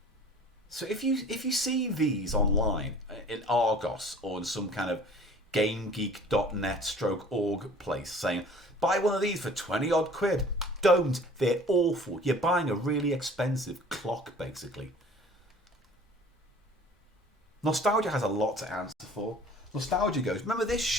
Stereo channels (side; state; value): both; normal; correlation 0.48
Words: So if you see these online in Argos or in some kind of GameGeek.net/org place saying, buy one of these for 20 odd quid, don't. They're awful. You're buying a really expensive clock, basically. Nostalgia has a lot to answer for. Nostalgia goes, remember this